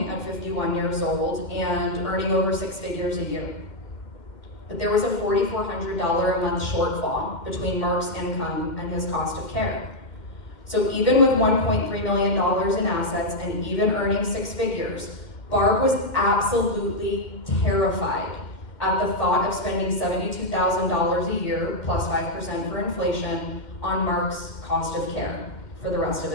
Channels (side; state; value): right; late; 2.1 ms